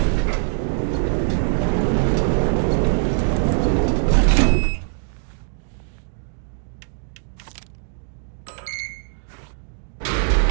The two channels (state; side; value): silent; left; digital silence